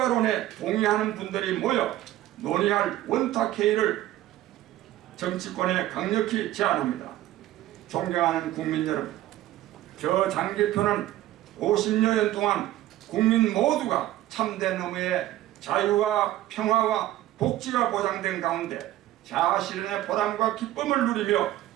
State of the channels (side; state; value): left; quieter; 14.5 dB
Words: 동의하는 분들이 모여 논의할 원탁회의를 정치권에 강력히 제안합니다. 존경하는 국민 여러분, 저 장기표는 50여년 동안 국민 모두가 참된 의미의 자유와 평화와 복지가 보장된 가운데 자아실현의 보람과 기쁨을 누리며